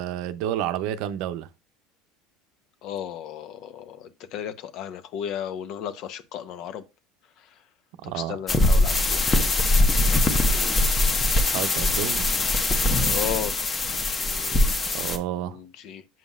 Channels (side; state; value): both; normal; correlation 0.70